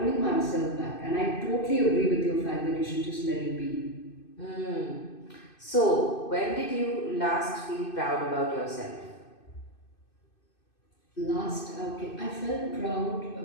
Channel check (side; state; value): right; late; 2.6 ms